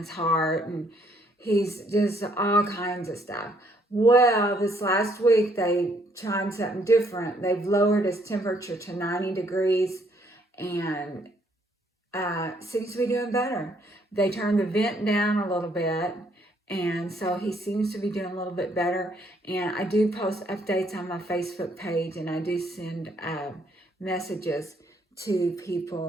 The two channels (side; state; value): both; normal; correlation 0.68